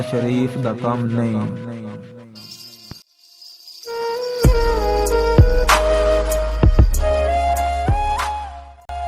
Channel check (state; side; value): identical; both; correlation 1.00